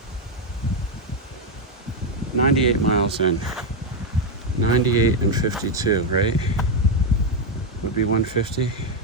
98 miles in. 98 and 52, right? Would be 150.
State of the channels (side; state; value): both; normal; correlation 0.04